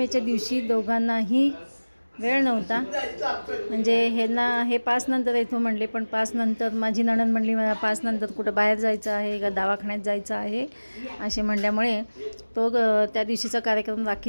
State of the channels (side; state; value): both; inverted; correlation -1.00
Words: दिवशी दोघांनाही वेळ नव्हता, म्हणजे हे 5 नंतर येतो म्हणले, पण 5 नंतर माझी नणंद म्हणली मला 5 नंतर कुठं बाहेर जायचं आहे का दवाखान्यात जायचं आहे असे म्हणल्यामुळे तो त्या दिवशीचा कार्यक्रम